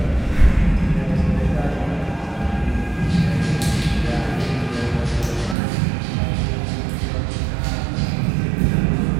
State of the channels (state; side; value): drops out; left; at 5.6 s